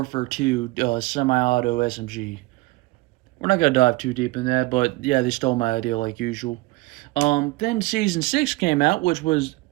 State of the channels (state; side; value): quieter; left; 21.4 dB